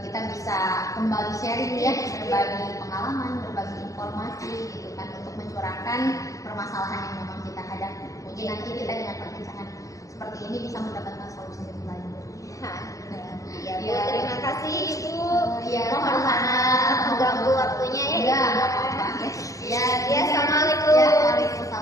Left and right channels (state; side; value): late; right; 0.16 ms